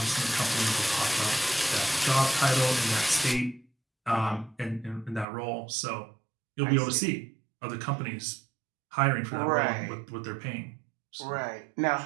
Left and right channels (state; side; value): drops out; left; at 5.2 s